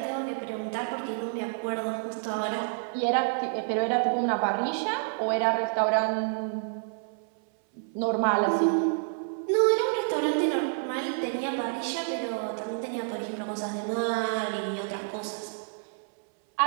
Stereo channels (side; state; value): left; silent; 59 dB below the other